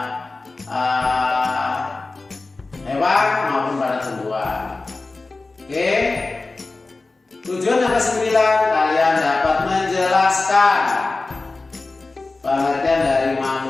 hewan maupun pada tumbuhan. Oke. Tujuan yang kesembilan, kalian dapat menjelaskan pengertian dari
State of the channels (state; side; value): quieter; right; 3.5 dB